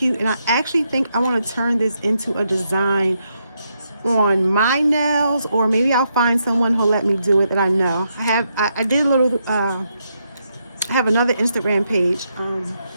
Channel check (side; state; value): both; inverted; correlation -0.80